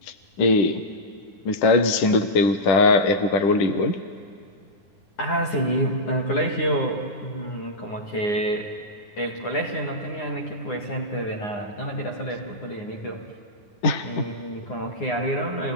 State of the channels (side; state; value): right; late; 10 ms